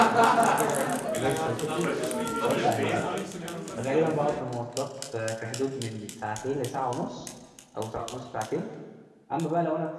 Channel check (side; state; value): both; identical; correlation 1.00